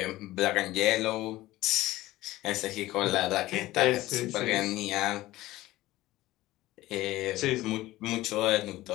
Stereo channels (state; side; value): quieter; right; 17.0 dB